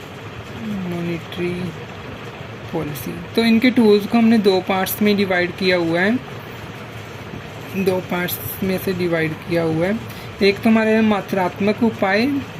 मॉनेटरी पॉलिसी। तो इनके टूल्स को हमने 2 पार्ट्स में डिवाइड किया हुआ है, 2 पार्ट्स में से डिवाइड किया हुआ है। एक तो हमारे मात्रात्मक उपाय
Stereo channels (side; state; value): both; identical; correlation 1.00